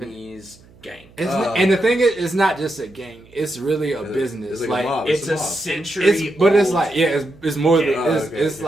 gang. And the thing is, it's not just a gang. It's really a business. It's like a mob. It's a century. But it's like it's more than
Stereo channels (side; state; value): right; noise; hum, 26 dB below the sound